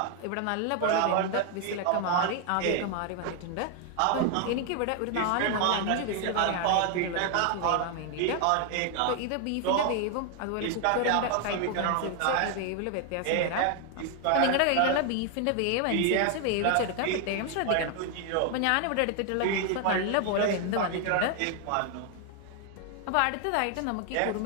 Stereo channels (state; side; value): different; both; correlation 0.00